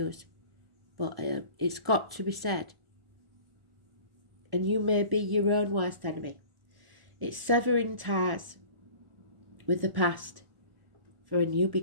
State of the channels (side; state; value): left; late; 1.0 ms